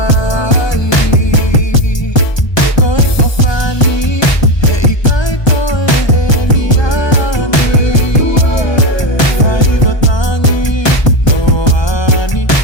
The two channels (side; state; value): right; late; 1.2 ms